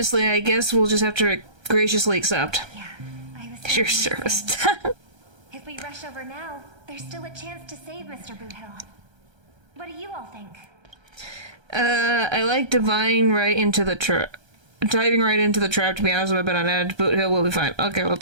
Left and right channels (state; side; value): late; left; 1.3 ms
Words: I guess we'll just have to graciously accept. Yeah, I was Your service. If we rush over now, there's still a chance to save Mr. Boothill. What do you all think? I like diving right into the trap, to be honest with you, but on edge. Boothill will be fine. Okay,